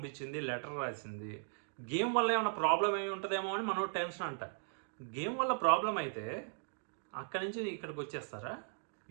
లెటర్ రాసింది. గేమ్ వల్ల ఏమైనా ప్రాబ్లం ఏమి ఉంటుందేమో అని మనోడు టెన్షన్ అంట. గేమ్ వల్ల ప్రాబ్లం అయితే అక్కడి నుంచి ఇక్కడికి వచ్చేస్తారా?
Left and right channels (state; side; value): silent; left; digital silence